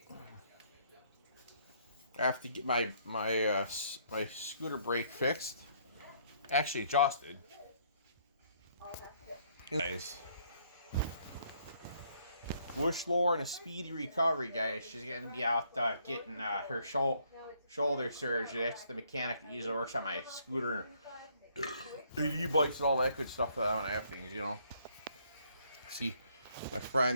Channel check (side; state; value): both; inverted; correlation -0.67